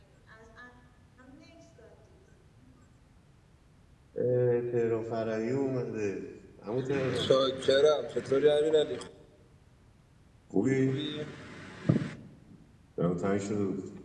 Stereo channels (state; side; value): identical; both; correlation 1.00